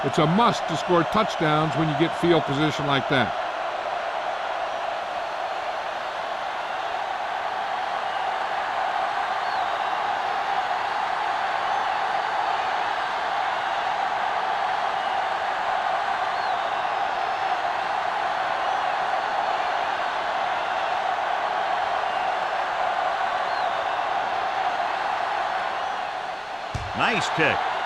It's a must to score touchdowns when you get field position like that. Nice kick.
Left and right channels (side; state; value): both; identical; correlation 1.00